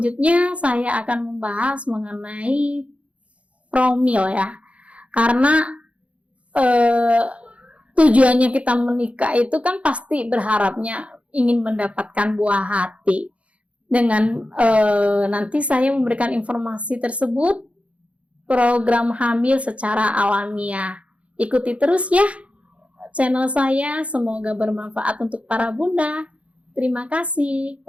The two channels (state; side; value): late; left; 0.063 ms